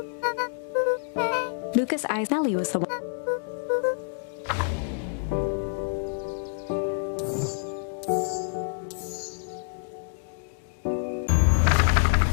Luka's eyes. Nellie was the one.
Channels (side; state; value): right; silent; digital silence